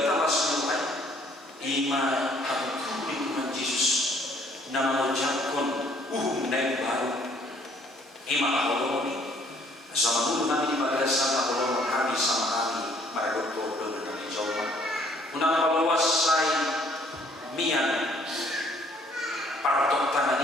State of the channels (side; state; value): both; normal; correlation 0.61